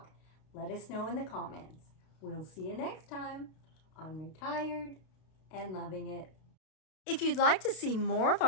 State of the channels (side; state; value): right; late; 32 ms